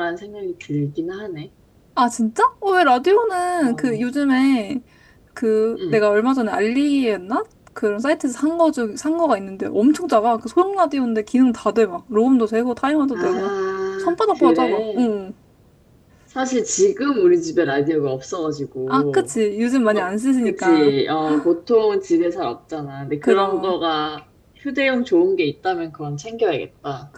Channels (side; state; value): both; identical; correlation 1.00